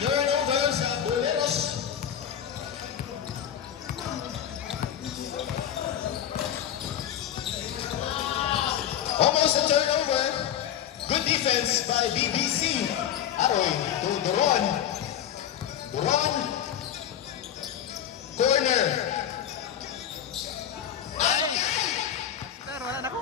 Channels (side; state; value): right; quieter; 10.0 dB